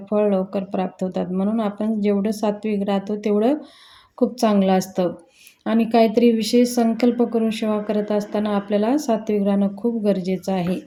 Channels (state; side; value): identical; both; correlation 1.00